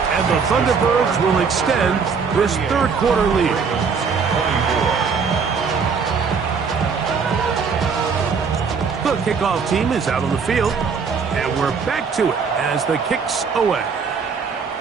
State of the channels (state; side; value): quieter; left; 5.6 dB